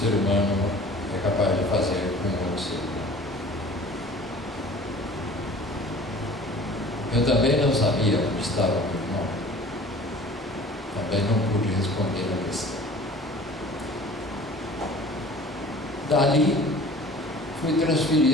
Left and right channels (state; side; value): normal; both; correlation 0.46